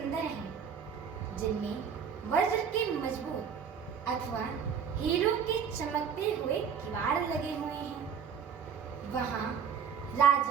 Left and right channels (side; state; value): left; quieter; 7.1 dB